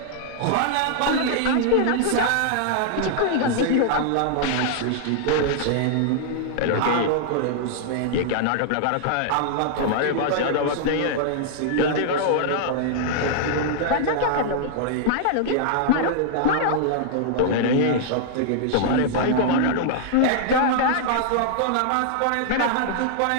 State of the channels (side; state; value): both; different; correlation -0.01